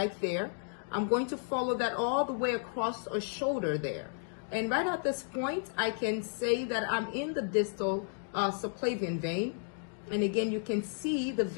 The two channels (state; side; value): silent; right; 56 dB below the other